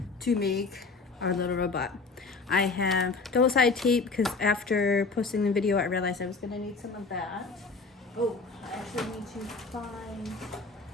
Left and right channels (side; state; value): right; quieter; 4.1 dB